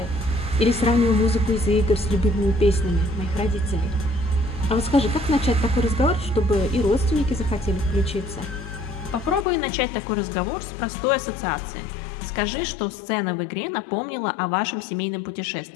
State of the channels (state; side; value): drops out; right; at 9.5 s